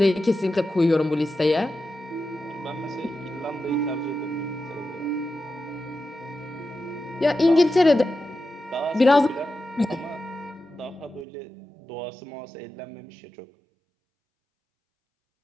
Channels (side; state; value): left; drops out; at 11.2 s